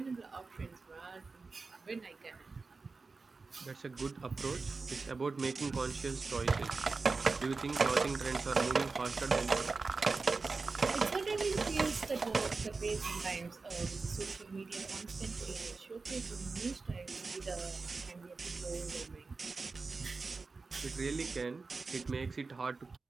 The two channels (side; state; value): left; quieter; 4.1 dB